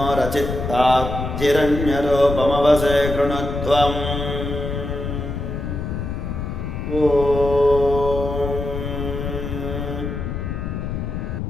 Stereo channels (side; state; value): left; noise; rumble, 4 dB below the sound